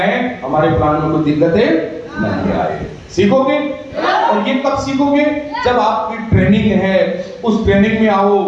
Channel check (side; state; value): both; identical; correlation 1.00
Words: हमारे प्लान में कोई दिक्कतें नहीं आए। सीखोगे, और ये कब सीखोगे? जब आपकी ट्रेनिंग है, उस ट्रेनिंग में आओ,